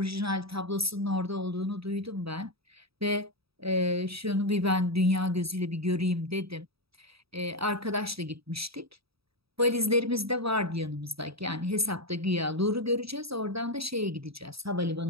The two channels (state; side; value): late; left; 0.77 ms